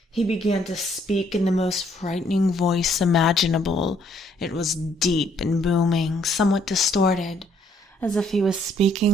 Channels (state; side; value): normal; both; correlation 0.67